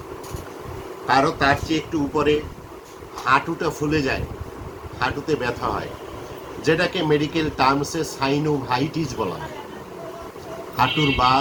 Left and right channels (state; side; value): identical; both; correlation 1.00